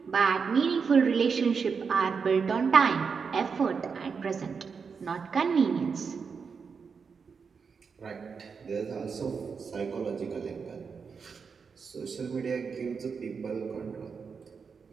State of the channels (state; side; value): quieter; left; 5.7 dB